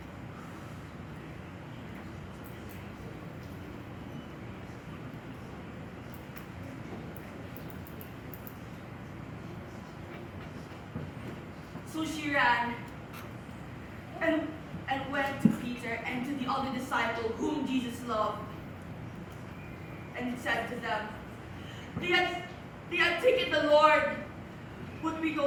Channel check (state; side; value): identical; both; correlation 1.00